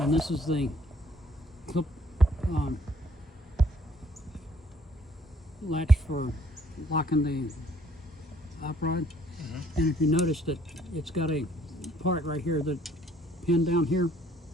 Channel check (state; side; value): normal; both; correlation 0.62